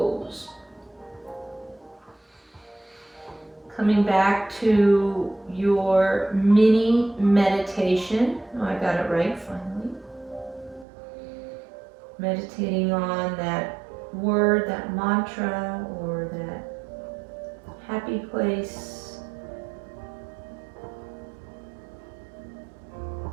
Coming back to your mini meditation. Oh, I got it right finally. Meditating on that word, that mantra, or that happy place,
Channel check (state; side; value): drops out; left; at 10.9 s